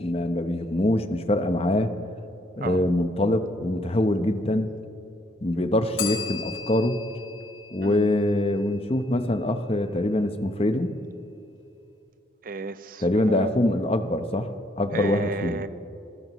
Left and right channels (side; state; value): both; normal; correlation 0.69